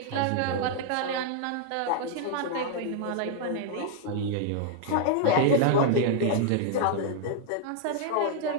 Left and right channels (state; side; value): different; both; correlation 0.00